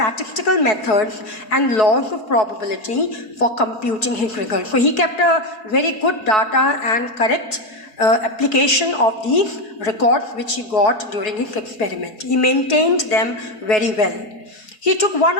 methods and laws of probability for computing his results. So he kept a very good data and correct application of these records which he got during his experiment. He maintained them very well. He took 1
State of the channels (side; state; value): right; late; 4.7 ms